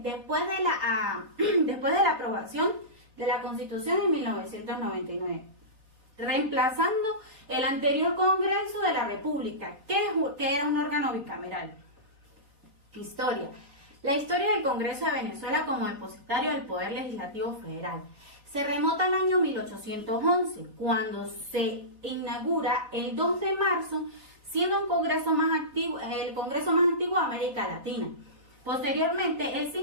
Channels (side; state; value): left; late; 4.1 ms